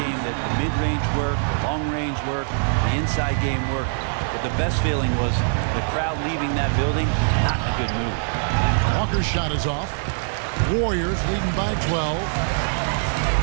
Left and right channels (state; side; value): silent; left; digital silence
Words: game that the mid-range worked, the long-range worked, the inside game worked. But the best feeling was the crowd leaving that building not in a good mood. Walker's shot is off. Warriors leading by 12.